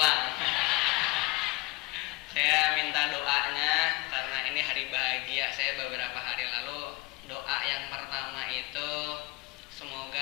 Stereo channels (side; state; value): right; quieter; 23.3 dB